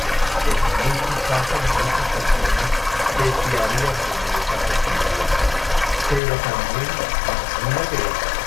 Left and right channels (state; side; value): drops out; right; at 6.2 s